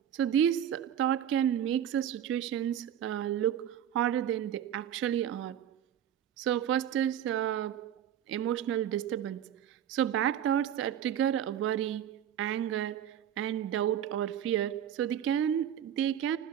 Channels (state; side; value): quieter; left; 10.2 dB